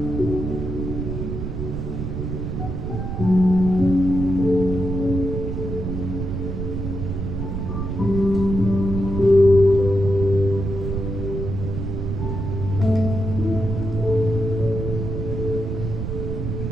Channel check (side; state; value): right; noise; rumble, 3 dB below the sound